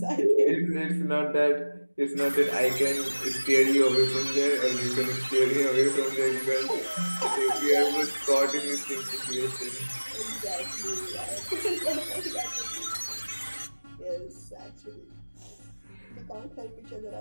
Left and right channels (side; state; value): both; inverted; correlation -1.00